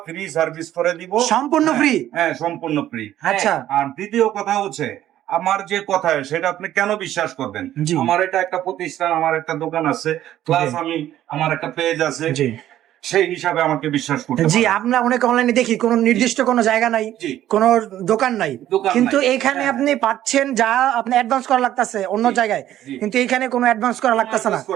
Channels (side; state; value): left; quieter; 12.6 dB